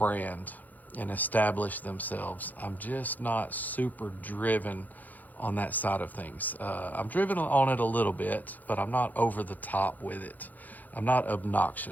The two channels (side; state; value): right; late; 0.082 ms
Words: and establish themselves. I'm just not super driven on that side of things. I'm driven on it a little bit, but I'm not over the top with it. I'm not